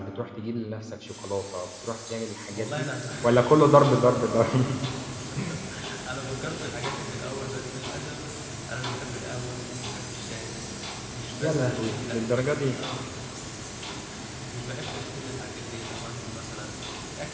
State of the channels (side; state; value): both; identical; correlation 1.00